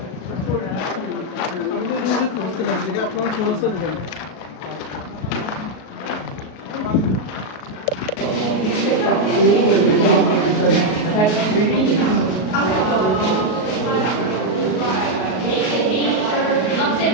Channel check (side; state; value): right; late; 38 ms